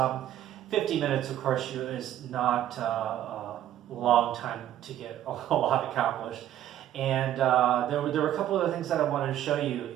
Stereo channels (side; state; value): left; quieter; 12.0 dB